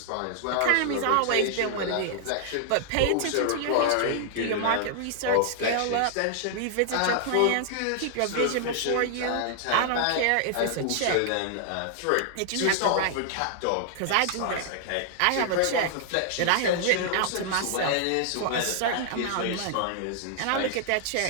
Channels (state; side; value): different; both; correlation -0.01